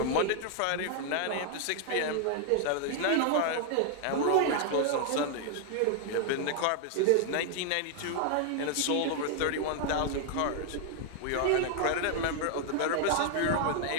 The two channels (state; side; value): different; both; correlation 0.00